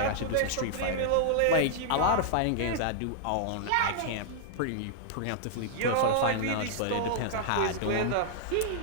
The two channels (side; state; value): both; different; correlation -0.01